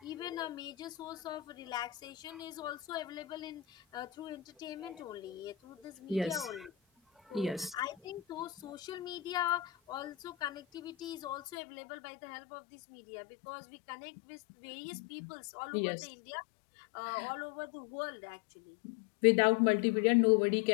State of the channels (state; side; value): drops out; right; at 11.6 s